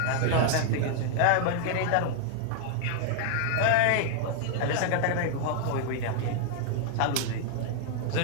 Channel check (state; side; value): different; both; correlation 0.00